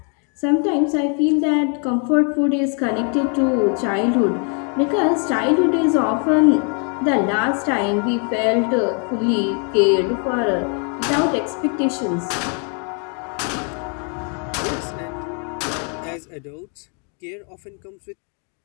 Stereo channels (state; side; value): quieter; right; 39.8 dB